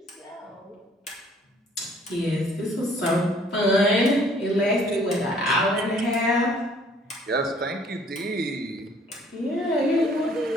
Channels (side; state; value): both; normal; correlation 0.59